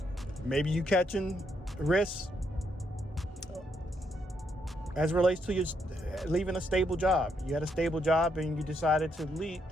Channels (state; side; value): normal; both; correlation 0.76